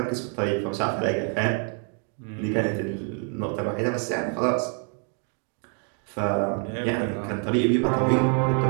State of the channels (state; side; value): quieter; left; 40.0 dB